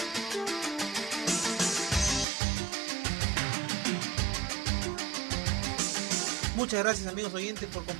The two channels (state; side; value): drops out; left; at 2.2 s